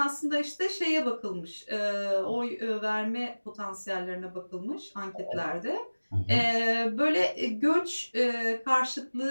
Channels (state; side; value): inverted; both; correlation -1.00